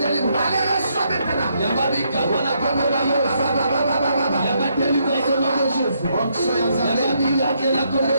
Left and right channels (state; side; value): inverted; both; correlation -0.75